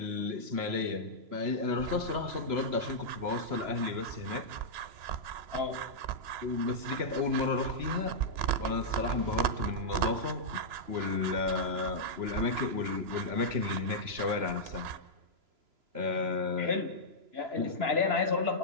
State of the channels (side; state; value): left; late; 3.0 ms